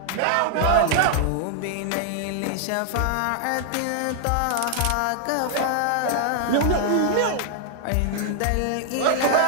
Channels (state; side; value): different; both; correlation -0.01